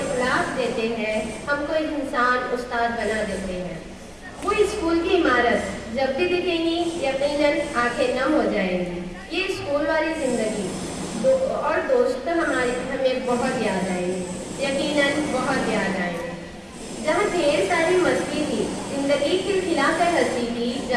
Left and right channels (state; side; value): identical; both; correlation 1.00